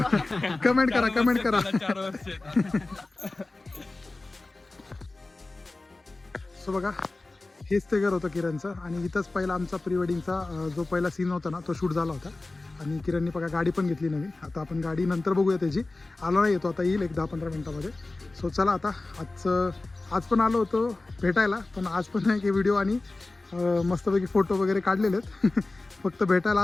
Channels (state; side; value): quieter; right; 3.2 dB